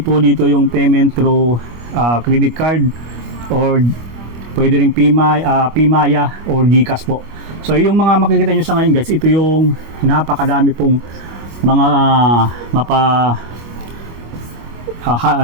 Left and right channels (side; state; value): left; late; 25 ms